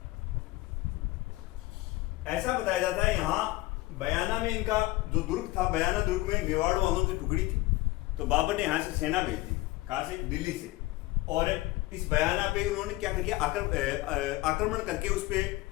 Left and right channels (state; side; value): quieter; right; 19.1 dB